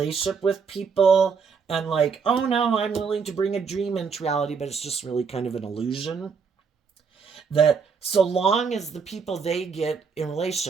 with people and like, oh no, I'm willing to bring a dream into reality, but it's just really kind of an illusion. That so long as the people they get in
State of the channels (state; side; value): quieter; left; 5.7 dB